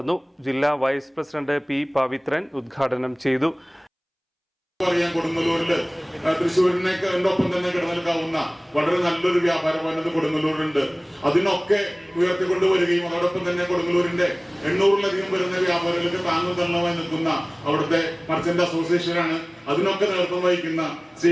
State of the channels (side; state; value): both; identical; correlation 1.00